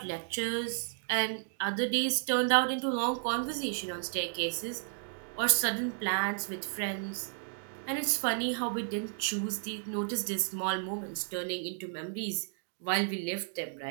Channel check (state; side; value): silent; left; digital silence